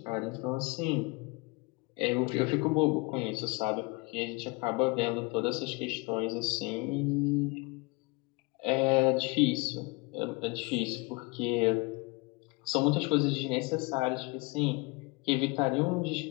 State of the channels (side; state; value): right; quieter; 27.1 dB